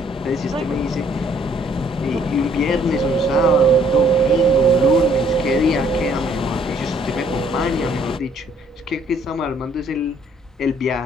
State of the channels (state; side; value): normal; both; correlation 0.63